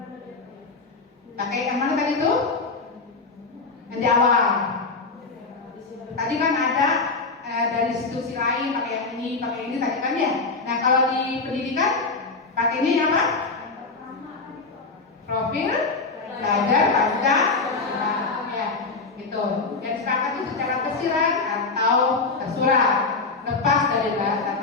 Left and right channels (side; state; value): right; quieter; 4.0 dB